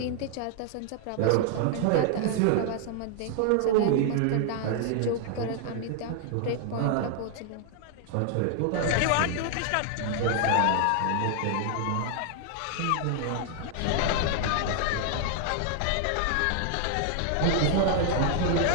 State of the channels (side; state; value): both; different; correlation 0.00